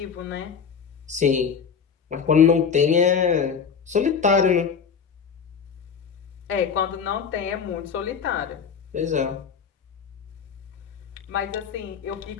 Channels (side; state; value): right; quieter; 6.5 dB